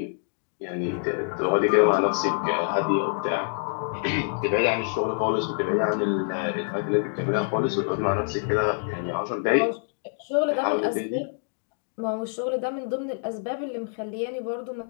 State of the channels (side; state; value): right; silent; digital silence